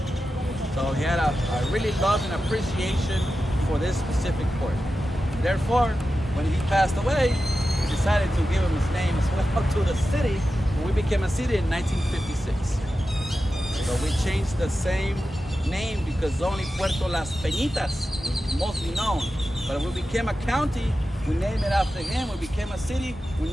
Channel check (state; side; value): normal; both; correlation 0.92